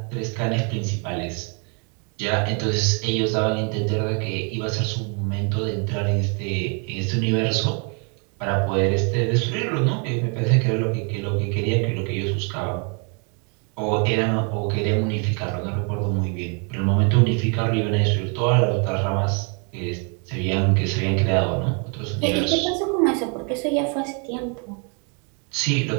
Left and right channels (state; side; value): quieter; left; 37.2 dB